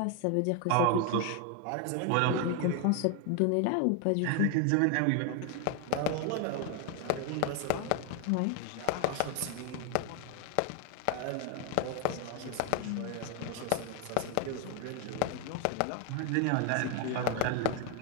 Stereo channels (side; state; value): both; different; correlation 0.01